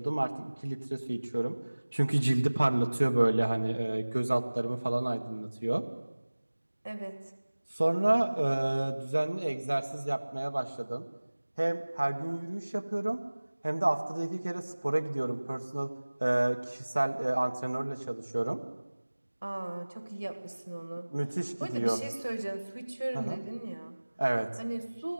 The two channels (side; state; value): both; inverted; correlation -1.00